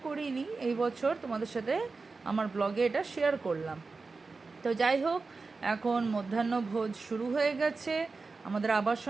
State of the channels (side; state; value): left; quieter; 4.1 dB